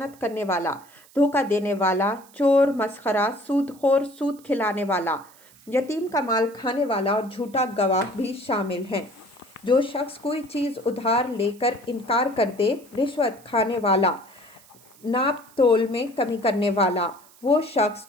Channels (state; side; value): noise; right; hiss, 26 dB below the sound